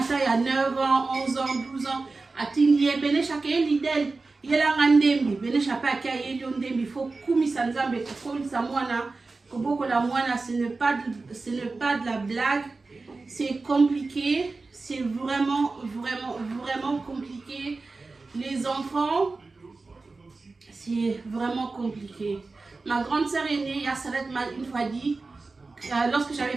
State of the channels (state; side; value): quieter; left; 3.7 dB